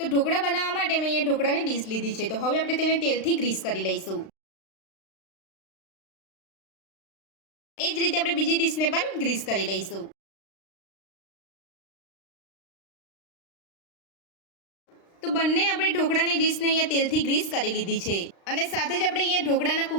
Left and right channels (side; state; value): right; late; 36 ms